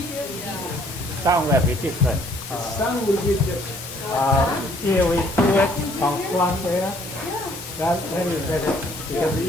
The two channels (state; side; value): normal; both; correlation 0.61